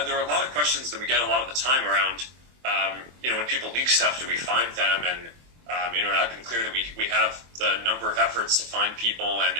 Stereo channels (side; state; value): left; late; 24 ms